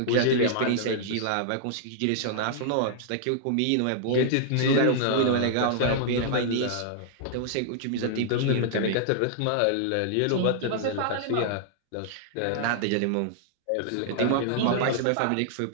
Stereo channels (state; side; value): different; both; correlation -0.01